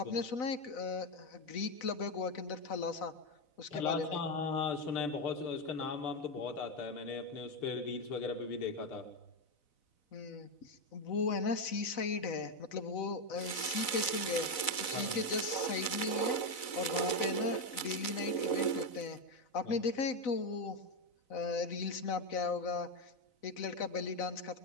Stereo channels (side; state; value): right; late; 4.0 ms